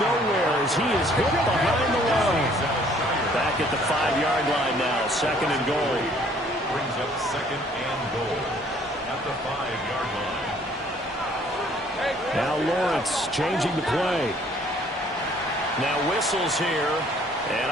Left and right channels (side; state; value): both; normal; correlation 0.60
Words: as he is hit behind the line. Back at the 5-yard line now, 2nd and goal. Brings up 2nd and goal at the 5-yard line. Now Lawrence changing the play. Now whistles here, and